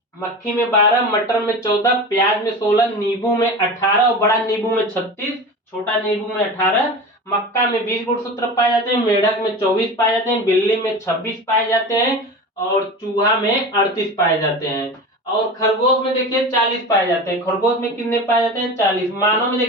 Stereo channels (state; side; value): normal; both; correlation 0.30